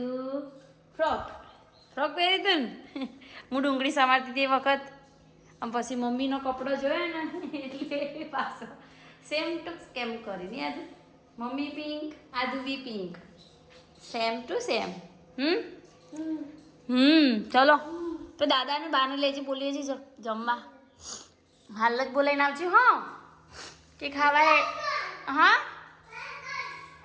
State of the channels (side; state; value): both; identical; correlation 1.00